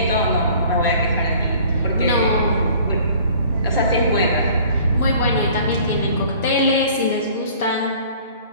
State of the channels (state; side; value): inverted; both; correlation -0.50